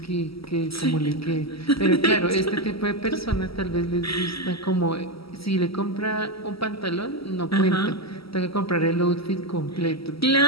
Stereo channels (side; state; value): right; late; 0.75 ms